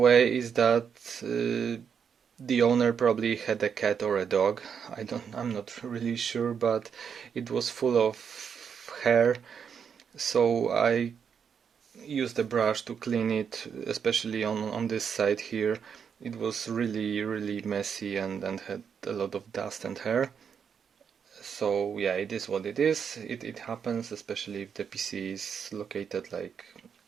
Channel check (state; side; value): quieter; left; 7.1 dB